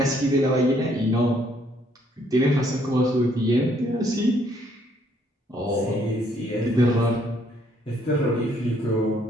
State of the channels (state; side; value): normal; both; correlation 0.67